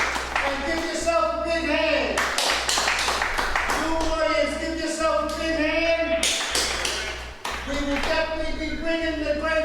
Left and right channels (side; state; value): both; identical; correlation 1.00